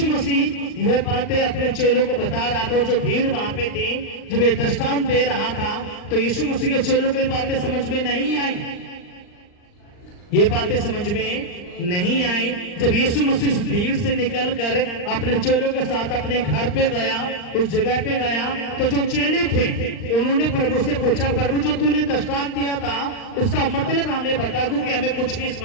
मसीह ये बातें अपने चेलों को बता रहा था और जो भीड़ वहां पे थी, जब ये दृष्टांत दे रहा था तो यीशु मसीह के चेलों को ये बातें समझ में नहीं आई। ये बातें समझ में नहीं आई। जब यीशु मसीह भीड़ से निकलकर अपने चेलों के साथ अपने घर पे गया, उस जगह पे गया, तो जो चेले थे उन्होंने प्रभु से पूछा, प्रभु जो तूने दृष्टांत दिया था उसका मतलब हमें बता, क्योंकि हमें कुछ भी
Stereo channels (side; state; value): right; late; 39 ms